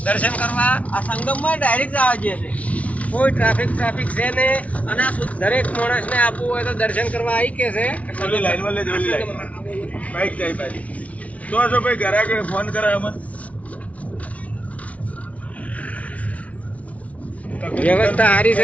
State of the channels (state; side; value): late; right; 0.067 ms